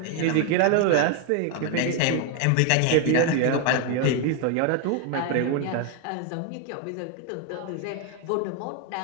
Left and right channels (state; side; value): different; both; correlation 0.01